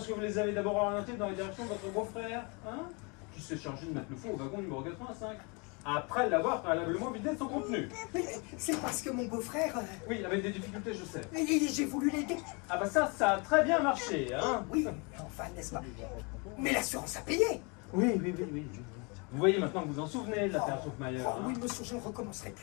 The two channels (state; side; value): quieter; right; 31.2 dB